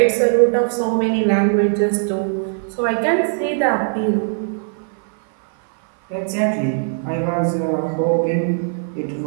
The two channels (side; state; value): left; silent; 58 dB below the other